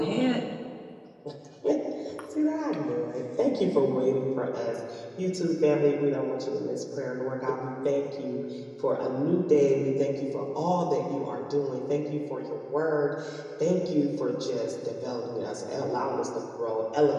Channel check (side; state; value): both; identical; correlation 1.00